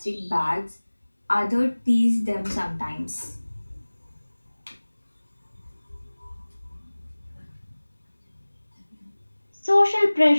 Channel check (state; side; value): inverted; both; correlation -1.00